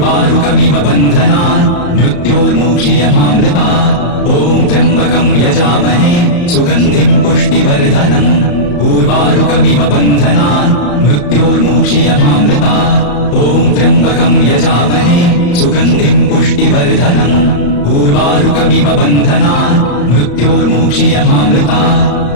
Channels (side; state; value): right; late; 34 ms